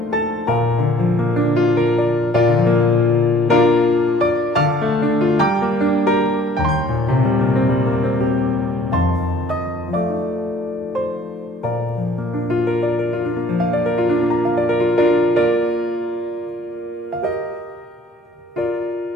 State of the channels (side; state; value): both; normal; correlation 0.56